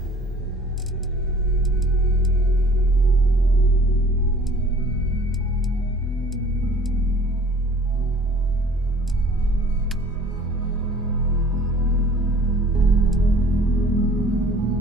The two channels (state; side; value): normal; both; correlation 0.50